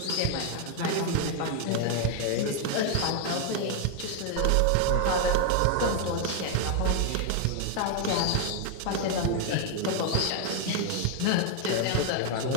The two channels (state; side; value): different; both; correlation 0.01